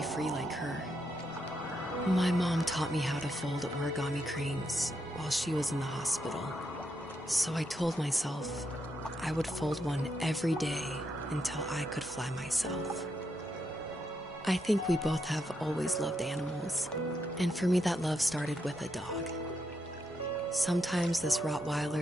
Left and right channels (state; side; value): normal; both; correlation 0.81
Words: free like her. My mom taught me how to fold origami cranes while she was in the hospital. So I told myself I would fold one every day until I could fly myself. I think we both have always loved animals, and for me that love started with a dog. Sometimes this